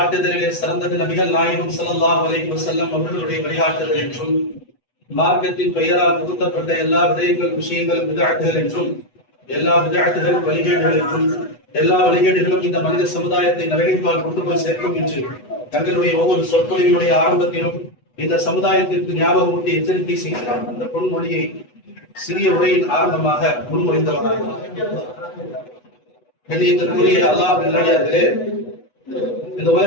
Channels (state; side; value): late; right; 8.1 ms